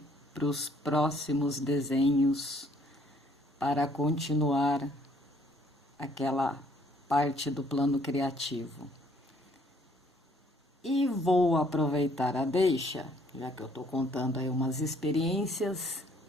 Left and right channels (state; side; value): normal; both; correlation 0.63